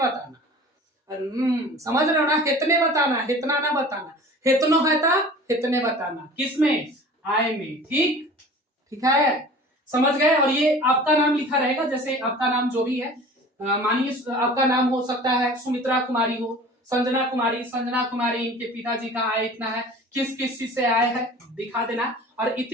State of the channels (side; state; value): both; normal; correlation 0.42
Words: समझ रहे हो ना, इतने बताना, इतना ना बताना, इतनो है था इतने बताना, किसमें, आय में, ठीक ठीक है, समझ गए। और ये आपका नाम लिखा रहेगा, जैसे आपका नाम जो भी है, मानिए आपका नाम हो सकता है सुमित्रा कुमारी हो, संजना कुमारी, इनके पिताजी का आय इतना है, किस किस चीज से आय है दिखा देना, और